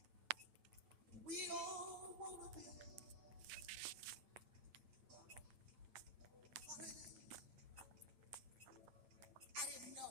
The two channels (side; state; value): left; late; 8.9 ms